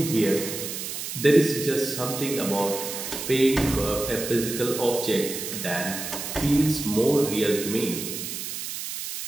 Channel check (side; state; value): right; noise; hiss, 6 dB below the sound